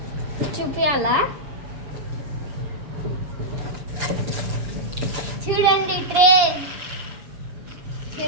చూపియాలా? చూడండి, ట్రైన్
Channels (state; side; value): late; left; 7.1 ms